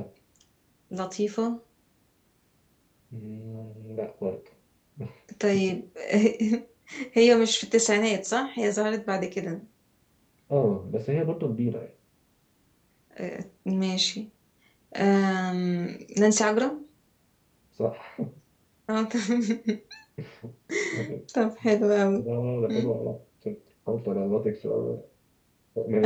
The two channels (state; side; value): identical; both; correlation 1.00